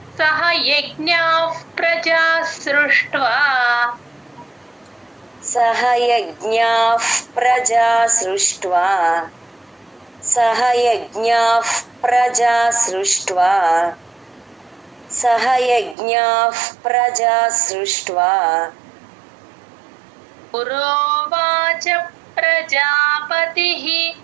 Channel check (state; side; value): drops out; left; at 16.0 s